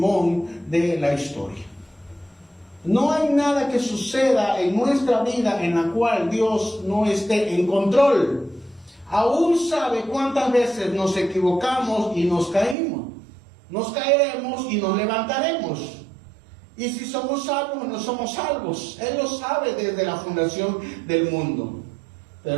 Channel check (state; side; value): drops out; left; at 12.8 s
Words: de la historia. No hay nada que suceda en nuestra vida en la cual Dios no esté en control. Aún sabe cuántas veces nos equivocamos y nos caímos. Nos caeremos y nos levantaremos. Y si somos salvos o no somos salvos, Él lo sabe desde la fundación del mundo.